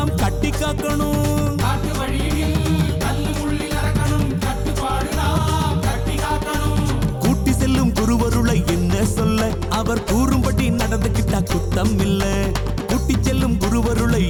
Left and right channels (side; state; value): both; identical; correlation 1.00